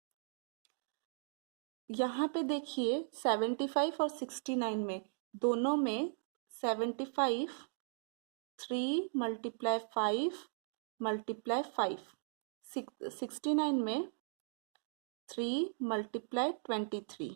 यहाँ पे देखिए 75 और 69 में, दोनों में 75 3 मल्टीप्लाई 5 मल्टीप्लाई 5, 69 में 3 मल्टीप्लाई 23।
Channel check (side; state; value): left; silent; digital silence